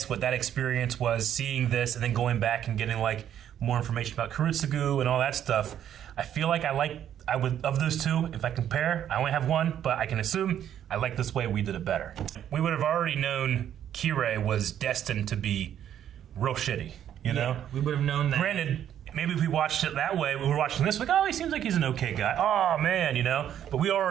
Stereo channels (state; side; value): quieter; left; 10.2 dB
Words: what that experience was, seeing this, and then going back and getting, like, more information about Kurutsugu and all that stuff, I feel like I would, of those two, if I compare, I only have one, but I can assume I like this way we did it better. We would have already known Kirei was destined to be real shitty, you know? We would have known that. Granted, maybe if we watched it that way, we were watching this, like, oh, he seems like he's an okay guy. Oh, man, you know? But we